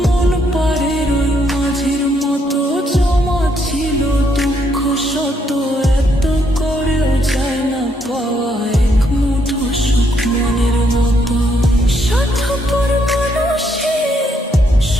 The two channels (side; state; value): both; normal; correlation 0.73